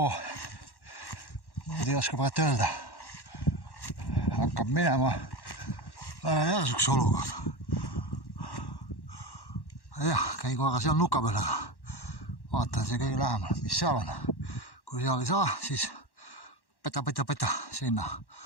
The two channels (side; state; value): right; late; 1.1 ms